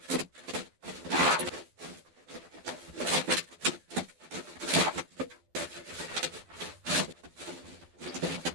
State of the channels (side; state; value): left; late; 12 ms